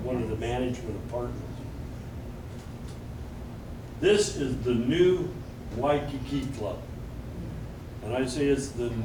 of the management apartments. This is the new Waikiki Club. And I say it's the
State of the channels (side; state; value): both; identical; correlation 1.00